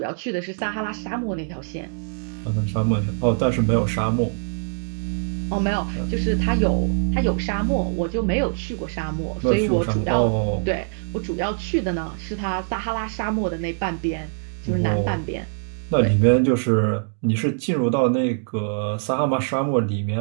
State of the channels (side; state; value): left; silent; digital silence